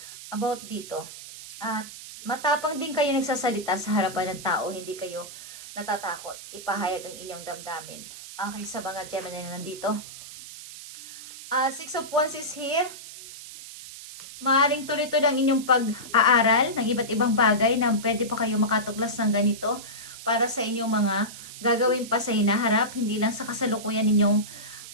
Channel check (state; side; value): noise; right; hiss, 14 dB below the sound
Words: about dito. At matapang din kayo nagsasalita sa harapan ng tao, hindi kayo natatakot ipahayag ang inyong damdamin. Okay, sa mga Gemini na nandito. Six of Wands is here. Maaring tuloy-tuloy ang inyong pag-aaral ng iba't ibang bagay na pwede pa kayo makatuklas ng ganito para sa inyong mga gagawin pa sa hinaharap, hindi lang sa kasalukuyan ninyong